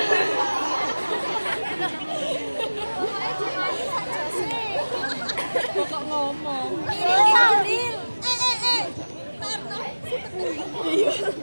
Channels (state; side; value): inverted; both; correlation -1.00